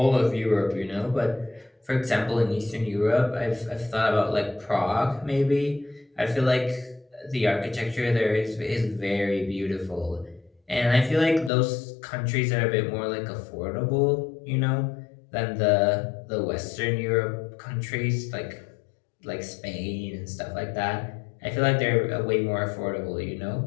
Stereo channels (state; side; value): drops out; right; at 11.5 s